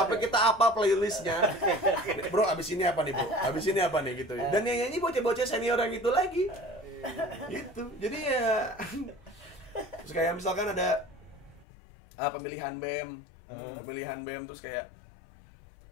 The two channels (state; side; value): drops out; right; at 11.7 s